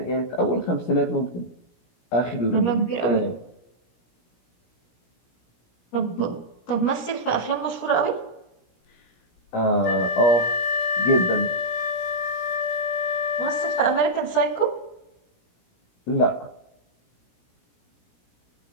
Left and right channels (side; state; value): right; late; 17 ms